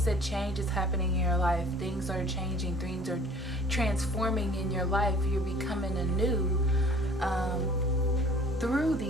that change is happening in your life. Things are changing. Things are transforming in your life. You're becoming anew through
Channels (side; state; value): both; normal; correlation 0.51